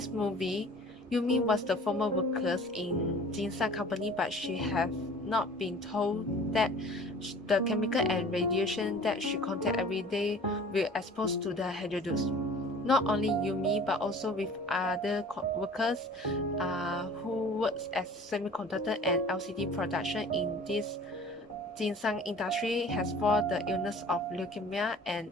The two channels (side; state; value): both; normal; correlation 0.46